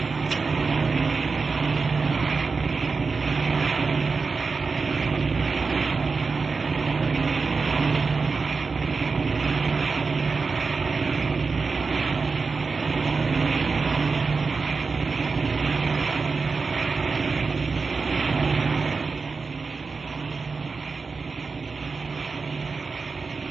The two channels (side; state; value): left; quieter; 4.5 dB